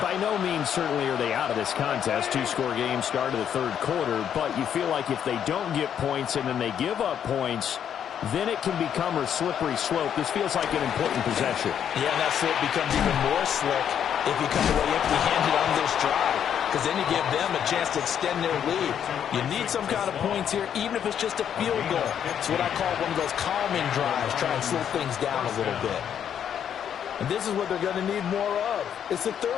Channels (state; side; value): quieter; right; 8.9 dB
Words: By no means certainly are they out of this contest. 2-score game start of the 3rd quarter, but you feel like if they don't get points and then they give up points, then it can become a slippery slope. This feels like an important possession. Yeah, and that slope becomes even more slick if you come away empty-handed on this drive. because then you give them a chance to extend their lead. You need some kind of points here, even if it's just a field goal. It's what I call one of those calming drives, try and slow things down a little bit. And this is what they're going to need more of. It's the